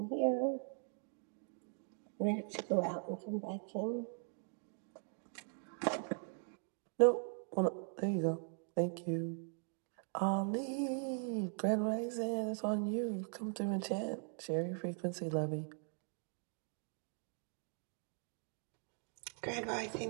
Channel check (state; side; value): silent; left; 51 dB below the other